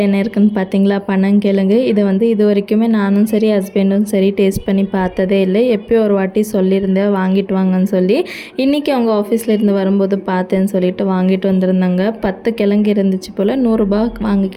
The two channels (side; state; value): both; identical; correlation 1.00